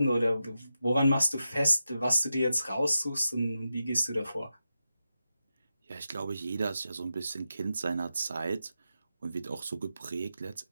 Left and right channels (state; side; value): inverted; both; correlation -0.89